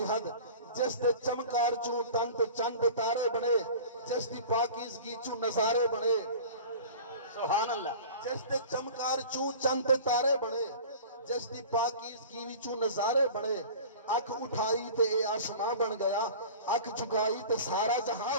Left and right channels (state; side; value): inverted; both; correlation -0.39